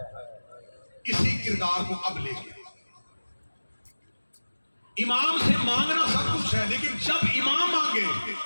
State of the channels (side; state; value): both; inverted; correlation -1.00